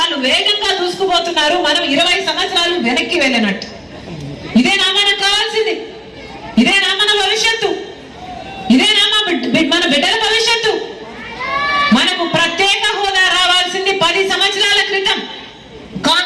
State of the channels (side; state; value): both; identical; correlation 1.00